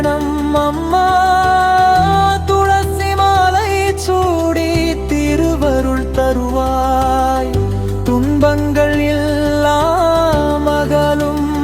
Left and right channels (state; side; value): identical; both; correlation 1.00